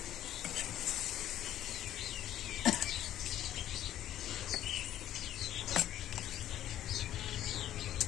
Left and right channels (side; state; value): right; quieter; 12.3 dB